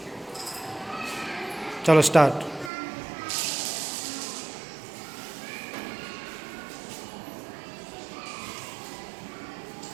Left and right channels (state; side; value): drops out; left; at 2.7 s